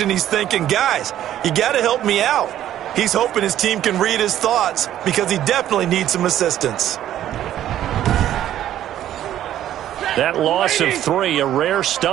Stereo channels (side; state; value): left; quieter; 11.9 dB